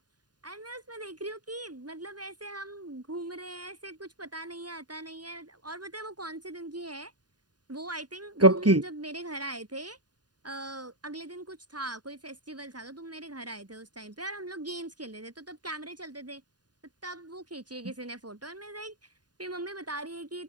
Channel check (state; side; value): late; left; 0.70 ms